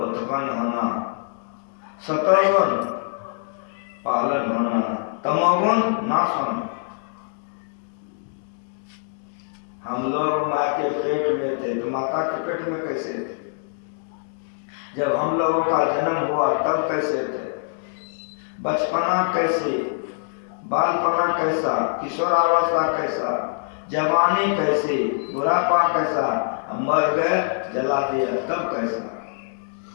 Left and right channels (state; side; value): silent; right; digital silence